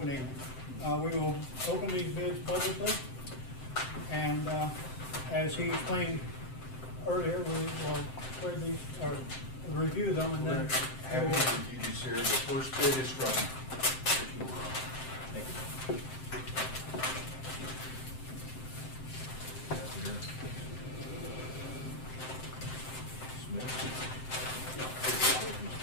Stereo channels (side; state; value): right; late; 7.7 ms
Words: We will open these bids publicly, and as he explained earlier, we will spread these, or review them, and then Having reviewed these here, the first bid is from